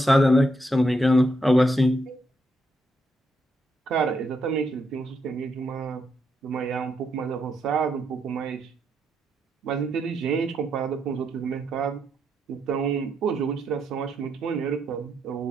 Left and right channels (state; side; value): normal; both; correlation 0.79